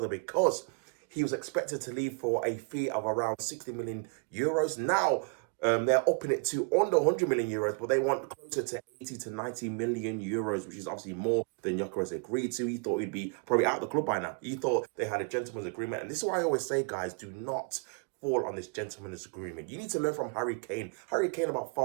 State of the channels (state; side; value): quieter; left; 37.8 dB